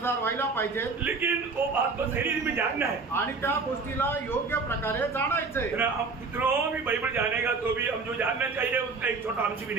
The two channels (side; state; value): left; quieter; 4.3 dB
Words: व्हायला पाहिजे. लेकिन वो बात को सही में जानना है आणि त्या गोष्टीला योग्य प्रकारे जाणायचंय. हम कितनों भी बाइबल जानेगा तो भी हम जो जानना चाहिए उसका एक छोटा अंश भी